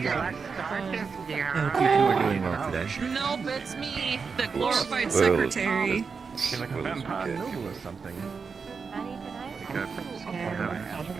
Nope, it's me, the glorified secretary. Like a vampire or something.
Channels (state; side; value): quieter; left; 5.3 dB